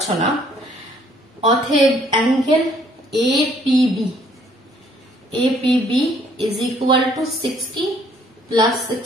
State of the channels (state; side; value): normal; both; correlation 0.63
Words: না, অতএব angle APB, APB is equal to 60 plus